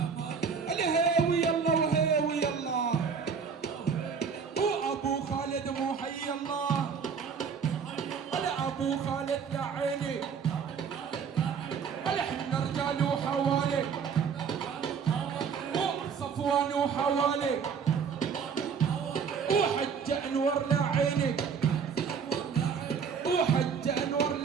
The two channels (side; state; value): left; quieter; 6.3 dB